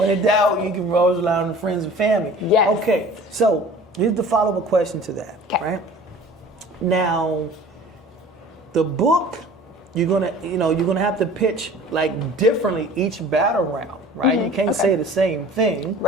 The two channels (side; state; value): both; normal; correlation 0.44